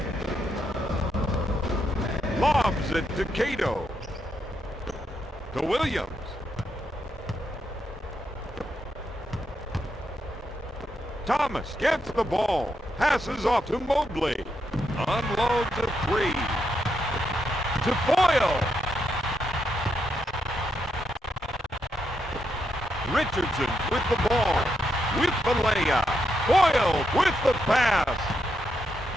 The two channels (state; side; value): normal; both; correlation 0.81